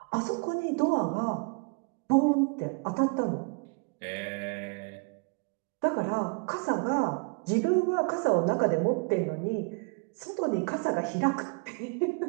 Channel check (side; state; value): left; quieter; 33.5 dB